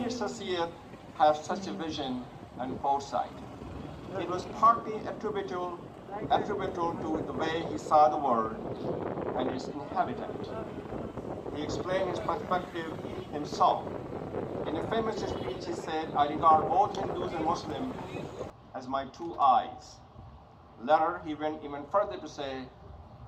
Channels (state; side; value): identical; both; correlation 1.00